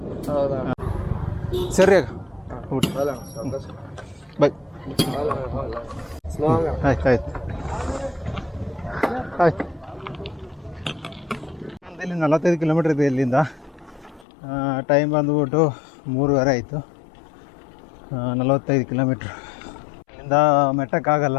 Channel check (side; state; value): right; drops out; at 14.2 s